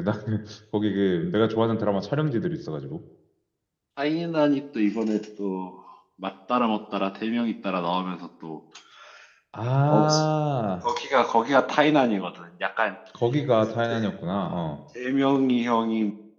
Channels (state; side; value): identical; both; correlation 1.00